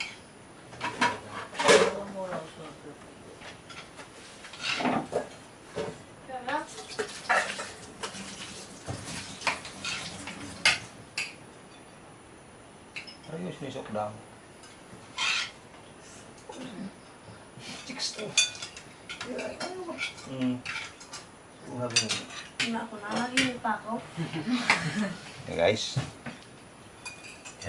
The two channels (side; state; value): both; identical; correlation 1.00